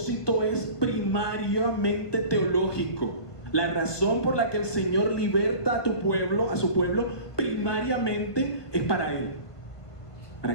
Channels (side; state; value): right; late; 1.2 ms